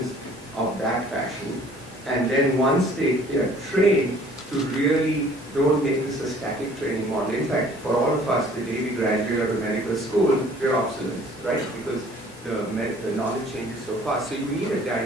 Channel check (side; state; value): both; normal; correlation 0.54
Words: of that fashion. And then once they are trained, to really don't make this a static training model. In fact, for all of us, the day we graduate out of medical school, we're obsolete, right? Because the knowledge changes so fast. So you need a